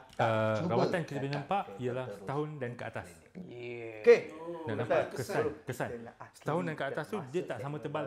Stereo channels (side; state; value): both; identical; correlation 1.00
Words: Rawatan kita boleh nampak ialah setahun dan ke atas. Okey. Dan nampak kesan. Setahun dan ke atas tu dia tak sama tebal